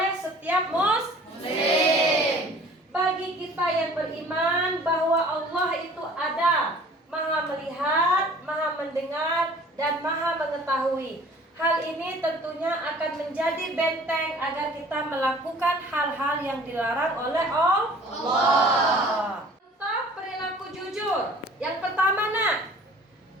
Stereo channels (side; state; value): both; normal; correlation 0.50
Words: setiap muslim. Bagi kita yang beriman bahwa Allah itu ada, Maha melihat, Maha mendengar, dan Maha mengetahui. Hal ini tentunya akan menjadi benteng agar kita melakukan hal-hal yang dilarang oleh Allah. Tentang perilaku jujur. Yang pertama nak,